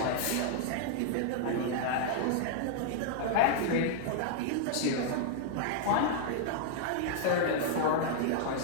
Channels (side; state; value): both; different; correlation -0.01